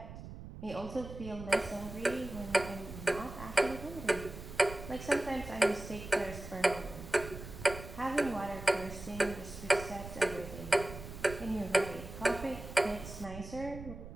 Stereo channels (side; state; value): right; noise; rumble, 12 dB below the sound